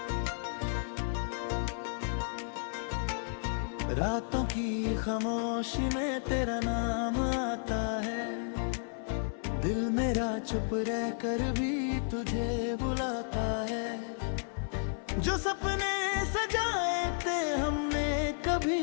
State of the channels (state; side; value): silent; right; 56 dB below the other